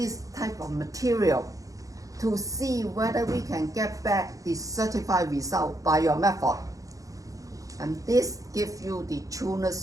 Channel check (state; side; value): late; left; 0.16 ms